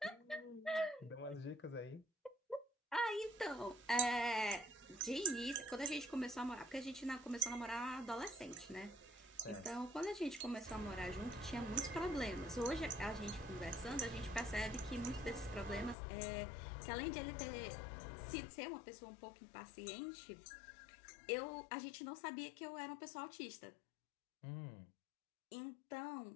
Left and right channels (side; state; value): right; drops out; at 16.0 s